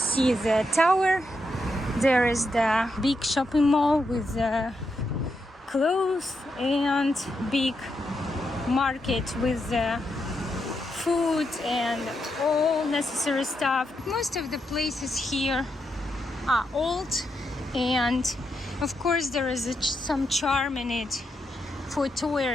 the tower? There is the big shopping mall with the clothes and big market with the food and all necessary stuff. Most of the places here are old, and of course there is some charm in it for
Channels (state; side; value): normal; both; correlation 0.83